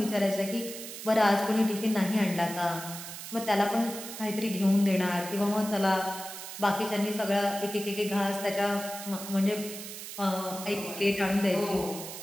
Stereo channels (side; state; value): right; noise; hiss, 10 dB below the sound